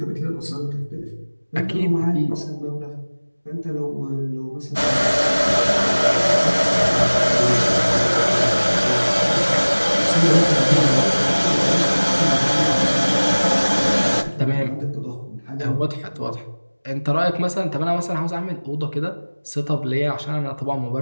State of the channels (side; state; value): both; inverted; correlation -1.00